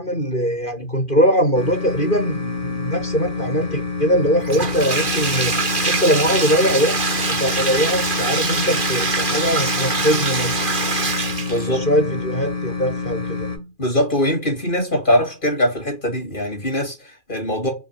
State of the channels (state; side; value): late; right; 2.4 ms